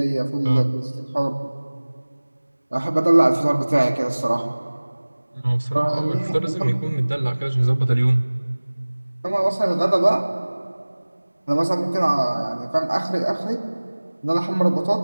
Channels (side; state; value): both; inverted; correlation -1.00